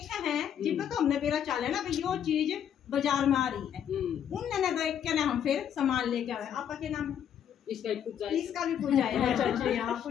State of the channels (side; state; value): right; quieter; 9.2 dB